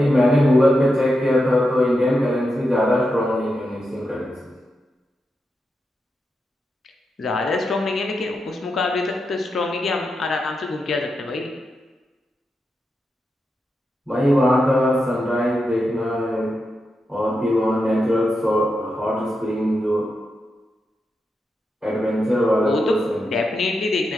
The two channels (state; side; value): normal; both; correlation 0.87